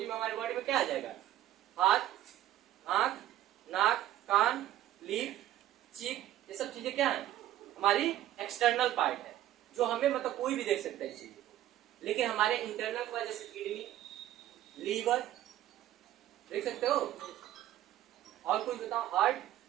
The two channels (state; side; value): quieter; left; 13.2 dB